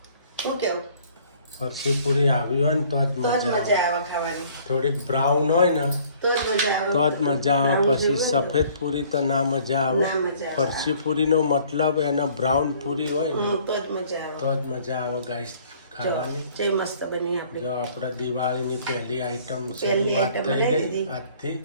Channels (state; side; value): inverted; both; correlation -0.57